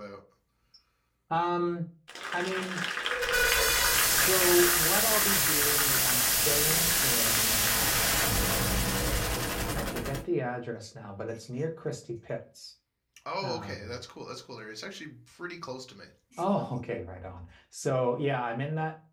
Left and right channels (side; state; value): both; identical; correlation 1.00